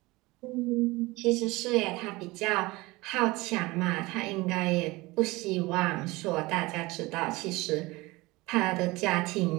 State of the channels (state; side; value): quieter; left; 21.8 dB